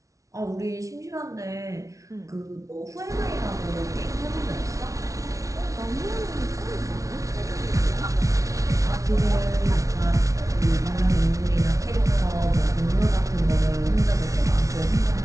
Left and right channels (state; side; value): late; left; 0.16 ms